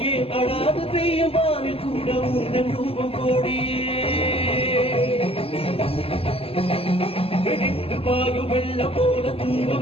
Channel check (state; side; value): late; right; 0.28 ms